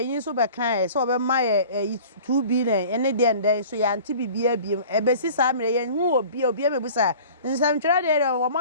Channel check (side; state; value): both; inverted; correlation -0.44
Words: so be kan so be maye 2B ne ene de nden so yanti bibia biem ebesi sa mere yen hu obi mebusa nsam twere de wo